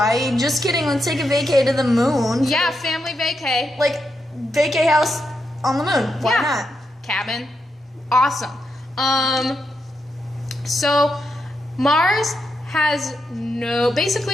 Just kidding. Let's take a vacay to the moon. Yeah, family vacay. Like vacay house on the moon. Why Yeah. not? Cabin. Awesome. So Mars has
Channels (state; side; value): normal; both; correlation 0.84